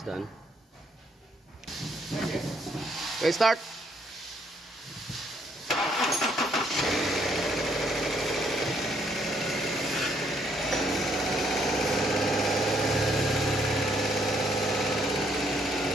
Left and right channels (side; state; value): both; normal; correlation 0.70